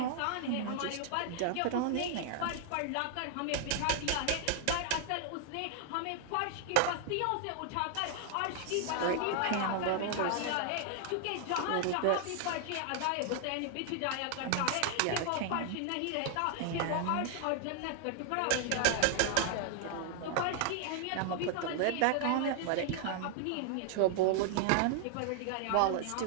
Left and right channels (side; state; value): both; different; correlation 0.00